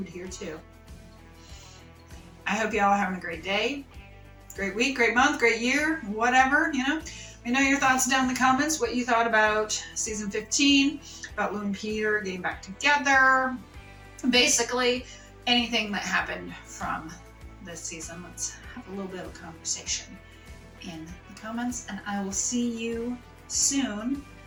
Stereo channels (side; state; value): both; identical; correlation 1.00